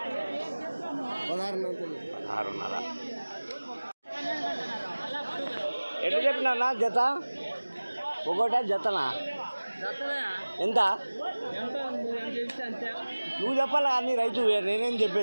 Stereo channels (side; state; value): both; inverted; correlation -1.00